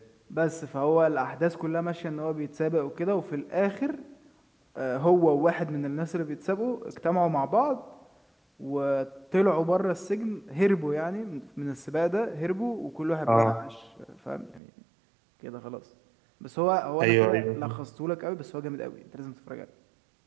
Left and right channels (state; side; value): drops out; left; at 14.6 s